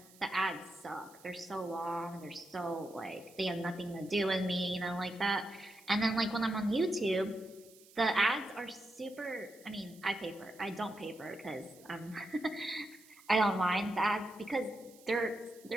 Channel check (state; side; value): noise; right; hiss, 24 dB below the sound